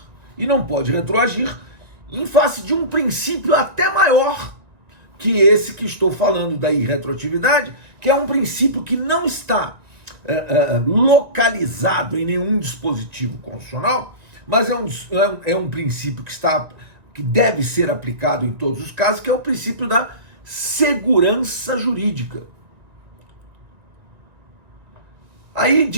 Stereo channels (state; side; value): late; left; 1.9 ms